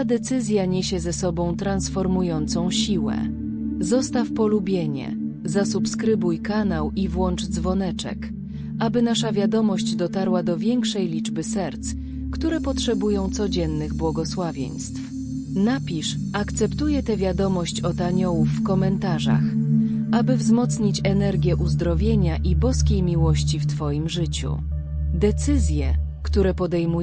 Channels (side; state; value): both; identical; correlation 1.00